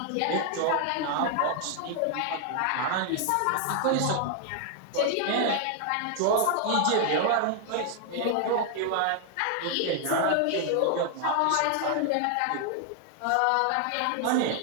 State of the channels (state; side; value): different; both; correlation 0.00